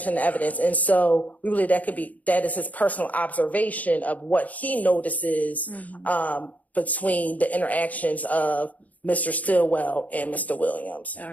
in the evidence. And so we believe that is his personal observation of what he notices between the interactions of Mr. Stillwell and Mr. Williams. All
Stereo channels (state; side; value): late; right; 0.075 ms